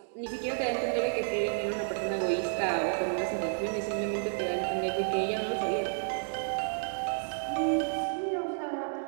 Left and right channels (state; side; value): silent; left; digital silence